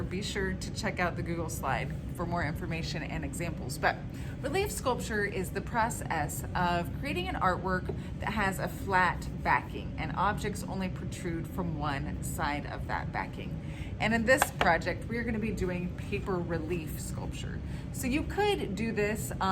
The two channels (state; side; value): identical; both; correlation 1.00